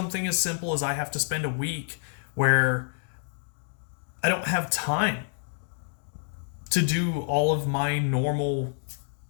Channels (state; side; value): silent; right; digital silence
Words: as simple as I have to spend a week where I don't have time to do all of my normal